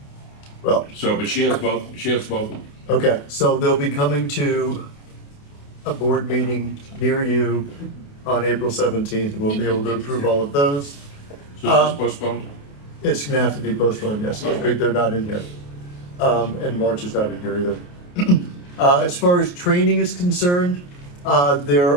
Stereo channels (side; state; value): right; late; 28 ms